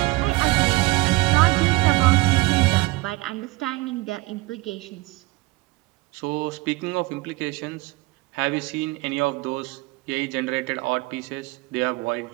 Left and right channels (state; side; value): quieter; left; 21.8 dB